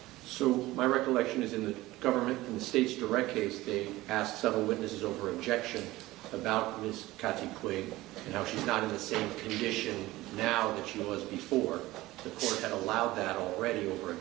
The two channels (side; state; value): left; quieter; 18.0 dB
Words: So my recollection is in the government, in the state's direct case, they asked several witnesses over objection about Ms. Kati Puig and how she's not in the same condition now that she was before. The court had allowed that already over